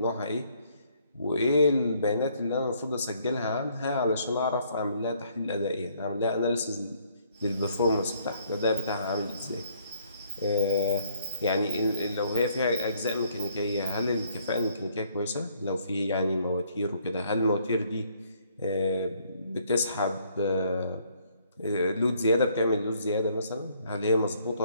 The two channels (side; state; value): both; inverted; correlation -0.66